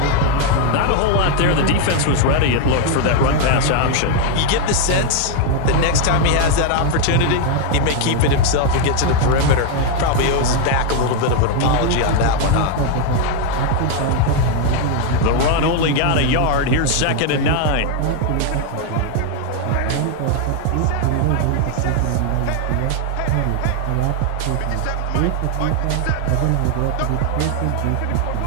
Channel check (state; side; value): different; both; correlation 0.01